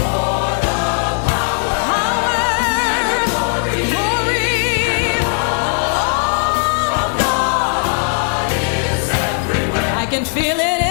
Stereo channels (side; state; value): right; silent; 55 dB below the other